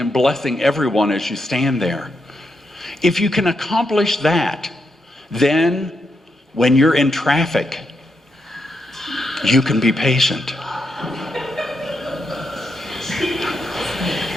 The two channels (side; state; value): both; normal; correlation 0.82